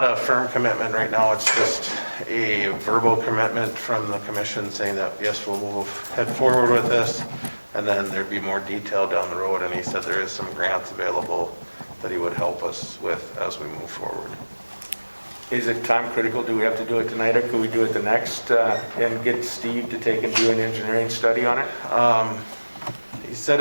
a firm commitment right now, it's just a verbal commitment from the commission saying that, yes, we'll head forward with this, and then there'd be more detail down the road, and he said there is some grants available that he would help us with as we move forward. Is it time critical? Do we have to do it tonight, or could we do it the next, and get Steve to take and do an engineering study on it? He said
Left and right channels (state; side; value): inverted; both; correlation -1.00